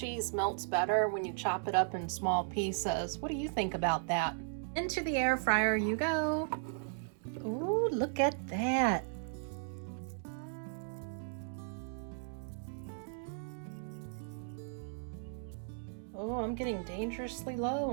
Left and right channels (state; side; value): silent; left; digital silence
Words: melts better when you chop it up in small pieces. What do you think about that? Into the air fryer you go. Ooh, look at that. Oh, I'm getting dangerously low